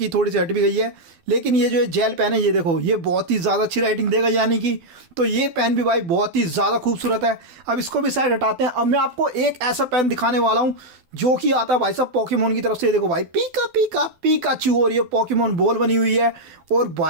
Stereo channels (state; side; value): late; left; 12 ms